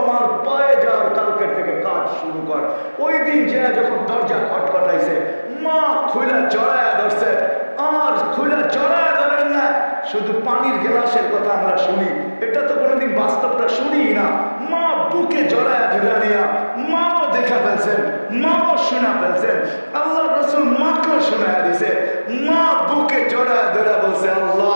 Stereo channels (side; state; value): both; inverted; correlation -1.00